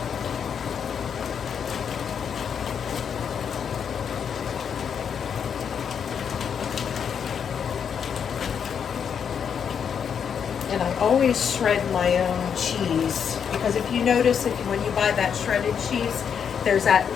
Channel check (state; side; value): quieter; right; 7.4 dB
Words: And I always shred my own cheese, because if you notice, when you buy that shredded cheese, there's that